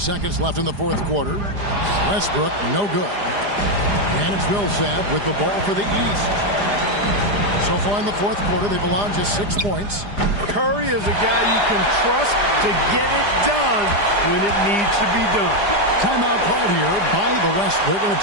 left in the fourth quarter. Westbrook, no good. And it's Millsap with the ball for the East. So far in the fourth quarter, they've allowed just 6 points. Curry is a guy you can trust to get it done when it needs to be done. Timeout called here by the West. They're going to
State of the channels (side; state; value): left; late; 4.9 ms